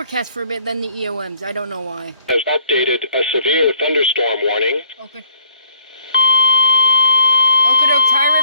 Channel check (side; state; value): both; inverted; correlation -0.60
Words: for a bit, then the EOMs. I don't know why. Has updated a severe thunderstorm warning. Okay. Okotok, Thai